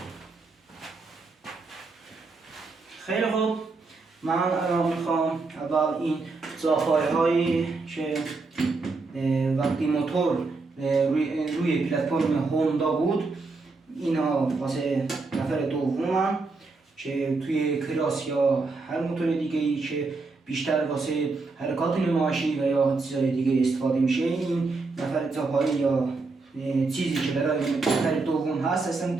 خیلی خوب، من الان میخوام اول این زاپای هایی که وقتی موتور روی پلتفرم هوندا بود اینا واسه نفر دومم که توی کراس یا هر موتور دیگه ای که بیشتر واسه حرکات نمایشی و یا چیزای دیگه استفاده میشه، این نفر زاپایی یا چیزی که برای نفر دوم هست اصلا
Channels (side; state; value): left; quieter; 3.9 dB